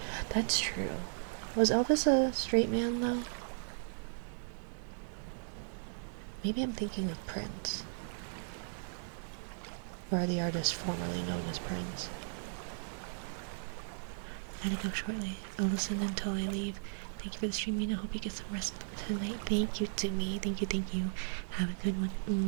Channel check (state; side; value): silent; left; digital silence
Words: That's true. Was Elvis a straight man, though? Maybe I'm thinking of Prince. Or the artist formerly known as Prince. Gotta go shortly. I'll listen until I leave. Thank you for the stream, Mina. Hope you get some rest tonight. Thank you to me. Thank you, thank you. Have a good one.